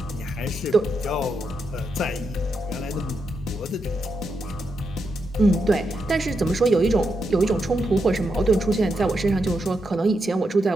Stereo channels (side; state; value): both; normal; correlation 0.84